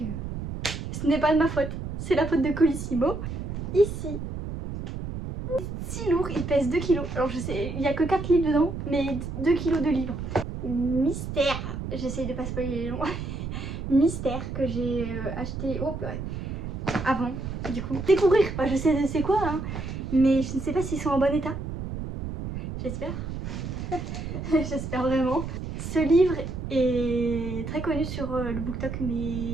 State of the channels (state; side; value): noise; right; rumble, 6 dB below the sound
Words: ce n'est pas de ma faute, c'est la faute de Colissimo. Ici, si lourd, il pèse 2 kilos. Alors je sais, il n'y a que 4 livres dedans, mais 2 kilos de livres. Mystère, j'essaye de pas spoiler les noms. Mystère que j'ai acheté avant, du coup. Découvrir, enfin, je sais c'est quoi, hein, mais je ne sais pas s'ils sont en bon état. J'espère. J'espère vraiment. Ce livre est très connu sur le BookTok,